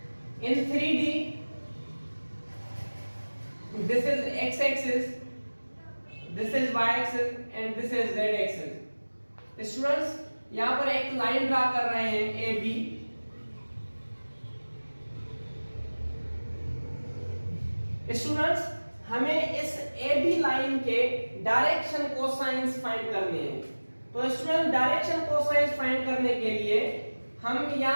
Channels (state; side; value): inverted; both; correlation -1.00